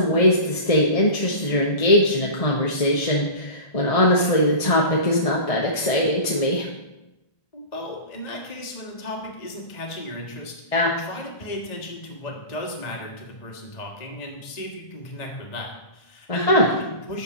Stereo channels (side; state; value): right; late; 1.6 ms